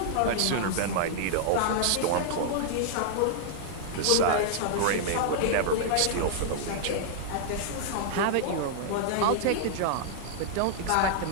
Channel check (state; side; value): different; both; correlation -0.01